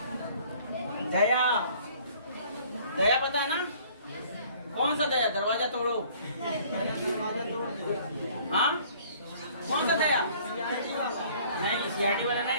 दया। दया पता है ना? कौन सा दया? दरवाजा तोड़ो, हाँ? कौन सा दया? नहीं, सीआरटी वाला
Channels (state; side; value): inverted; both; correlation -0.55